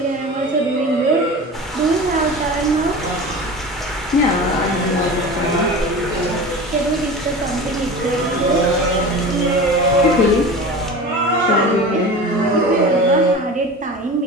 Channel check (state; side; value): normal; both; correlation 0.33